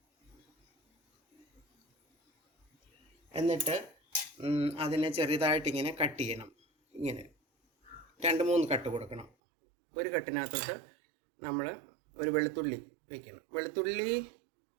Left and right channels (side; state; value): left; drops out; at 9.3 s